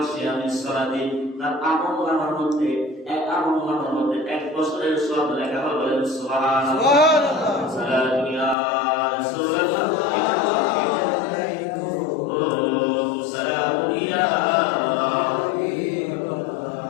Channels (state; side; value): drops out; right; at 8.6 s